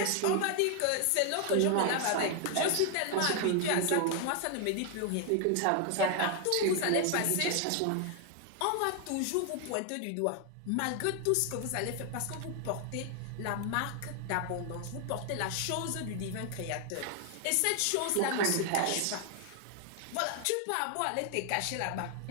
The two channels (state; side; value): different; both; correlation 0.00